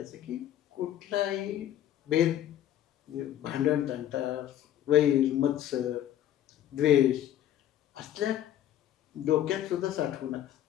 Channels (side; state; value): right; quieter; 11.7 dB